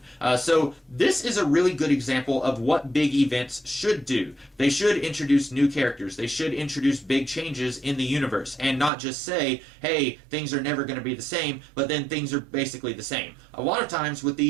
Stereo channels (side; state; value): left; drops out; at 8.9 s